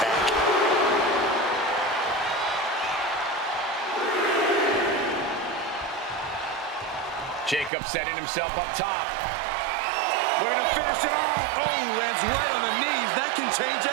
Jacob setting himself up top. We're going to finish it off. Oh, lands right on the knees. That can change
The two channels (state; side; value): drops out; left; at 7.7 s